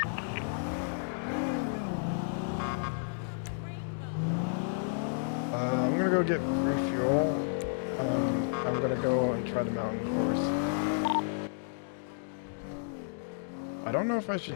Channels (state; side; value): silent; right; digital silence